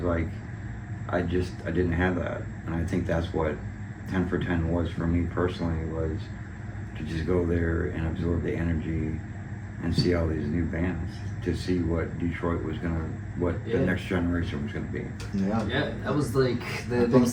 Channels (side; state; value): both; identical; correlation 1.00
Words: like, I didn't have that. And I think that's what 10 for 10 was for me personally, was to just go there and absorb the energy and see all these new bands, to see what Detroit was what the next generation was gonna be. Yeah, that was like the